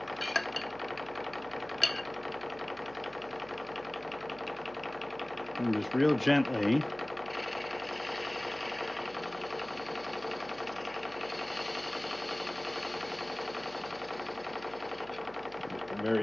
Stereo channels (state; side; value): noise; right; hum, 21 dB below the sound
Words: And just real gently at the